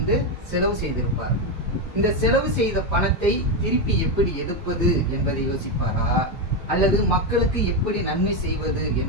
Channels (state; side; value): normal; both; correlation 0.08